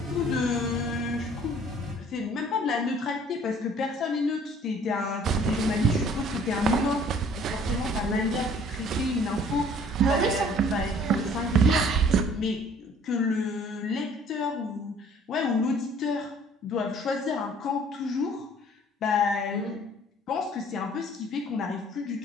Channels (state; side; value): normal; both; correlation 0.55